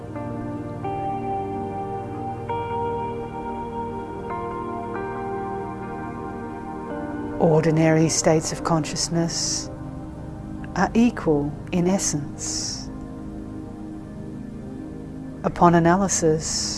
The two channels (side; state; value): both; identical; correlation 1.00